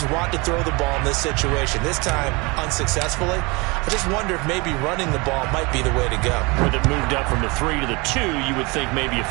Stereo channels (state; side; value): quieter; left; 26.6 dB